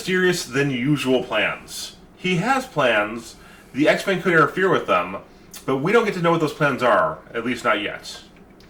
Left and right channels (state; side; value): identical; both; correlation 1.00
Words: than usual plans. He has plans. The X-Men could interfere with them, but we don't get to know what those plans are. At least not yet.